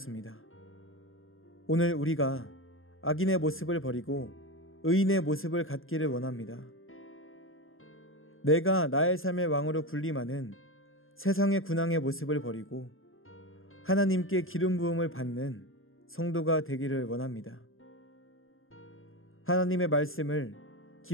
오늘 우리가 악인의 모습을 버리고 의인의 모습을 갖기를 원합니다. 내가 나의 삶의 왕으로 군림하는 세상의 군왕의 모습을 버리고 하나님께 기름 부음을 받는 성도가 되기를 원합니다. 하나님의 말씀을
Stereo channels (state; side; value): late; right; 0.60 ms